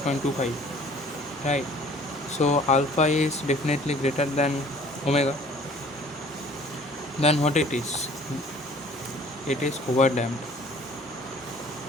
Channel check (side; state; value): both; normal; correlation 0.52